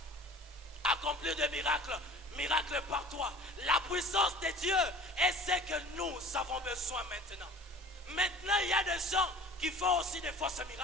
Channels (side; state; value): both; normal; correlation 0.44